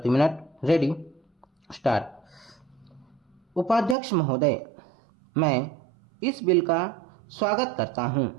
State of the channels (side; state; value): left; drops out; at 4.0 s